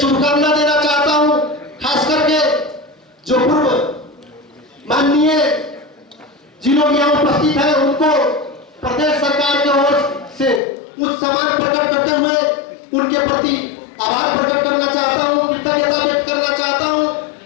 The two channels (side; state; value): right; drops out; at 10.6 s